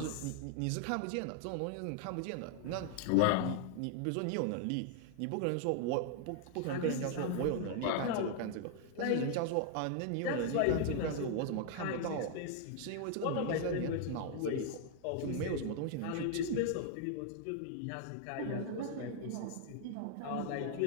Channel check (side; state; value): both; different; correlation 0.00